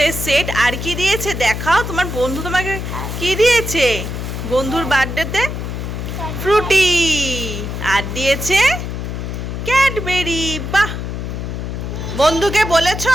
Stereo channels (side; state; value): left; noise; hum, 5 dB below the sound